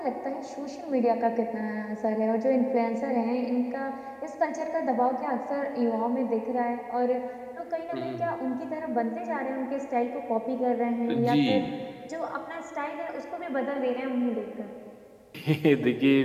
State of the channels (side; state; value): both; identical; correlation 1.00